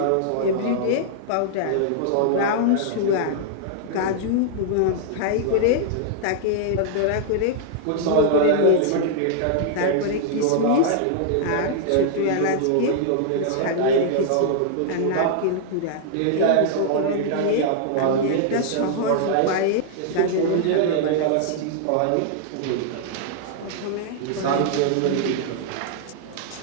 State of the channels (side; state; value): both; different; correlation -0.01